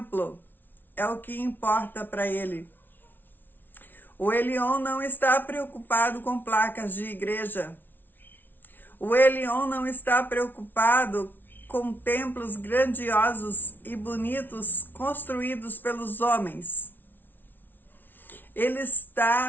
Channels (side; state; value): right; late; 0.093 ms